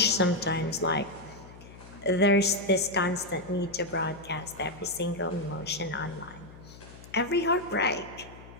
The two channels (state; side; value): noise; left; hum, 18 dB below the sound